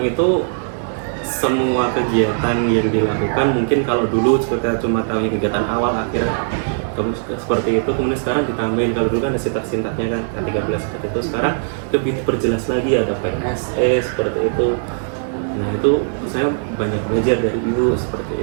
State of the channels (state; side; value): silent; left; digital silence